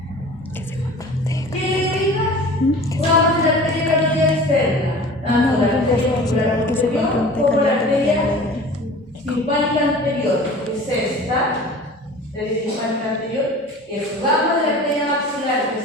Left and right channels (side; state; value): both; normal; correlation 0.41